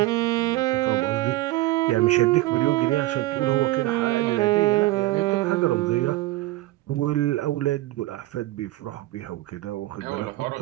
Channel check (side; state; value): left; quieter; 17.9 dB